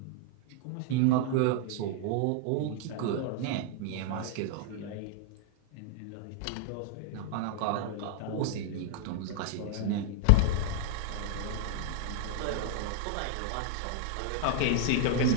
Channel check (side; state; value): both; different; correlation 0.00